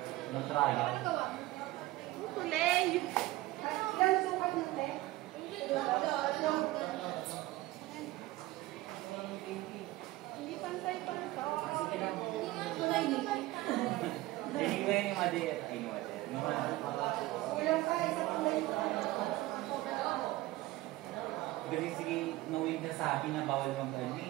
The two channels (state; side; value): quieter; left; 18.1 dB